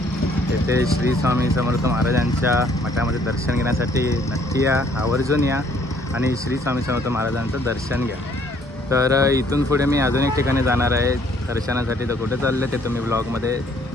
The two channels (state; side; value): normal; both; correlation 0.62